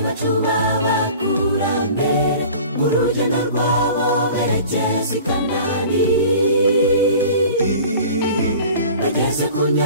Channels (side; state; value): both; inverted; correlation -0.43